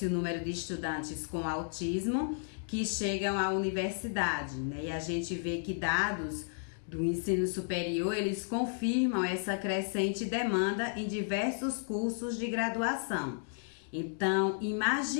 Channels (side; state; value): right; silent; digital silence